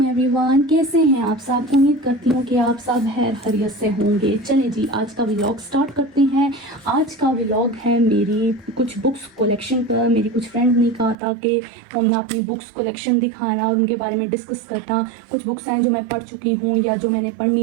एवरीवन, कैसे हैं आप सब। उम्मीद करती हूँ कि आप सब खैरियत से होंगे। चलें जी, आज का व्लॉग स्टार्ट करते हैं। आज का व्लॉग है मेरी कुछ बुक्स कलेक्शन पर। मेरी कुछ फ्रेंड ने कहा था कि हमने अपनी बुक्स कलेक्शन दिखाना और उनके बारे में डिस्कस करना। कुछ बुक्स हैं जो मैं पढ़ चुकी हूँ या जो मैंने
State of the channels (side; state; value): left; drops out; at 11.2 s